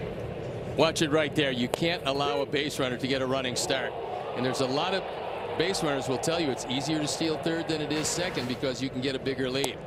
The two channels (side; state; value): both; identical; correlation 1.00